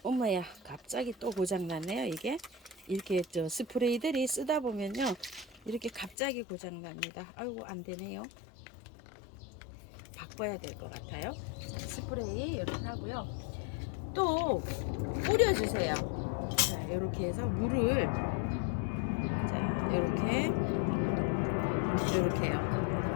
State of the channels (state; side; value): drops out; right; at 6.2 s